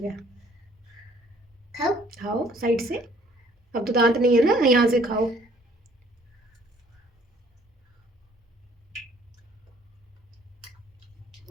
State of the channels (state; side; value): normal; both; correlation 0.59